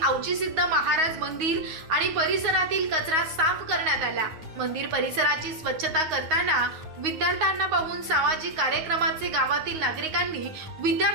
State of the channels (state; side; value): late; left; 9.4 ms